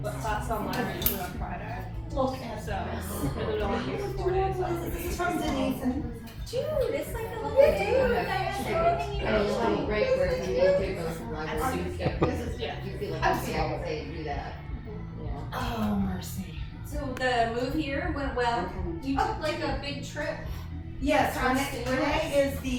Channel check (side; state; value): both; identical; correlation 1.00